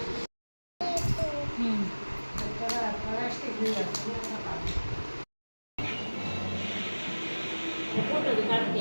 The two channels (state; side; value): inverted; both; correlation -1.00